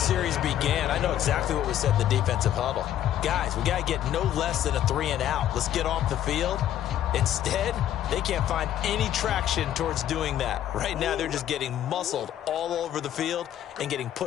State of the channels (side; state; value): right; quieter; 11.4 dB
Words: began, I know exactly what was said in the defensive huddle. Guys, we got to get no less than a 3-and-out. Let's get off the field. Instead, they can't find any traction towards doing that. Right now, they're just getting muscled all over the field and getting